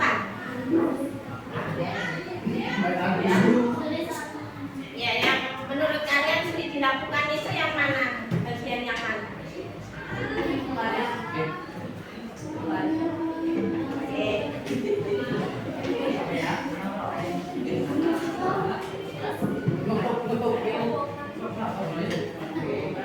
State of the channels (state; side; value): identical; both; correlation 1.00